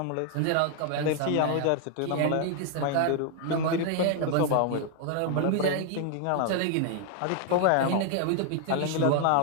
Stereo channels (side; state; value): both; different; correlation 0.00